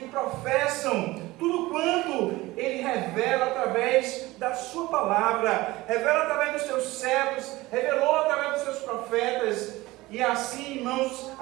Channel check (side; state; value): left; quieter; 19.4 dB